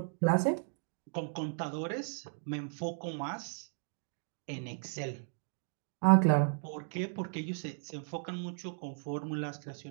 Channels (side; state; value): left; silent; digital silence